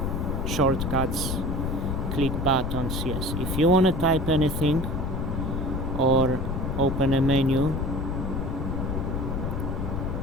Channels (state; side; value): noise; left; rumble, 2 dB below the sound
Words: shortcuts, click buttons. Yes, if you want to type anything or open a menu,